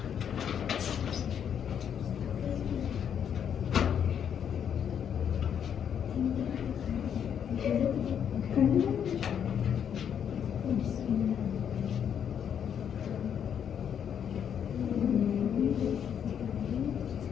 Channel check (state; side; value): quieter; right; 8.4 dB